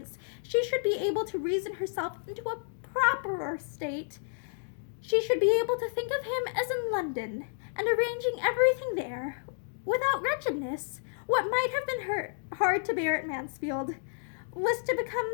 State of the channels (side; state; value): right; silent; digital silence